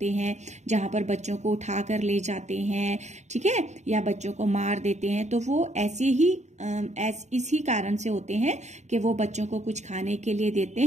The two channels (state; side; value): late; left; 0.33 ms